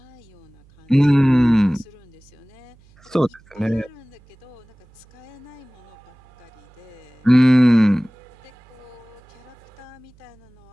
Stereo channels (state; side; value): noise; right; hum, 28 dB below the sound